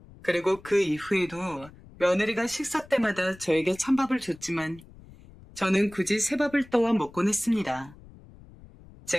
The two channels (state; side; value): noise; left; rumble, 22 dB below the sound